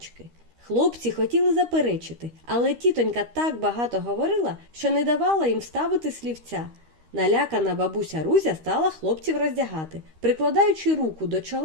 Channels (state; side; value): late; left; 13 ms